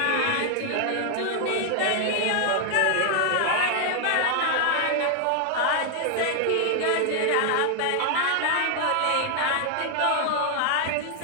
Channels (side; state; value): both; different; correlation 0.00